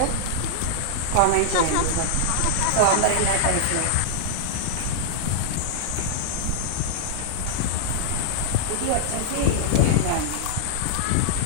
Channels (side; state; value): both; different; correlation -0.01